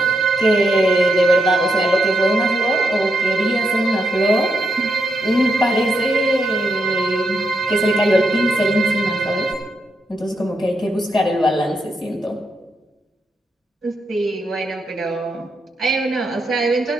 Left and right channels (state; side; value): normal; both; correlation 0.82